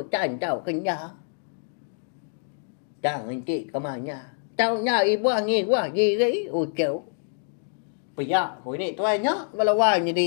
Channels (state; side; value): silent; right; digital silence